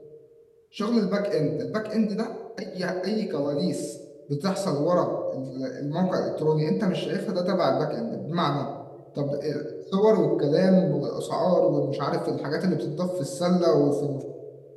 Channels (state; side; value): identical; both; correlation 1.00